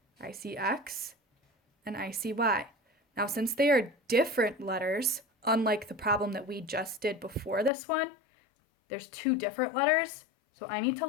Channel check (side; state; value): right; drops out; at 7.7 s